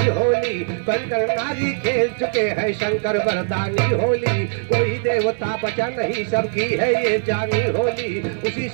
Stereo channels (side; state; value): left; silent; digital silence